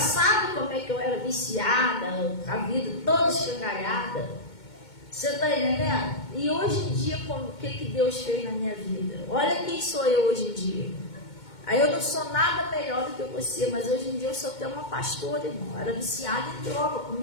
como é que eu era viciada, a vida toda escangalhada. Você está entendendo? E hoje em dia, o que Deus fez na minha vida? Olha quem sou eu hoje em dia. Aí eu não sou nada melhor do que você, mas hoje em dia eu sou até uma pastora, irmão. Eu era viciada em droga,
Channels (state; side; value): late; right; 2.2 ms